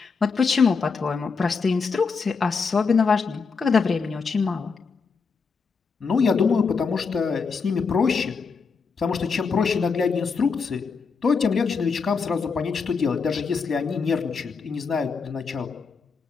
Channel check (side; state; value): right; quieter; 5.1 dB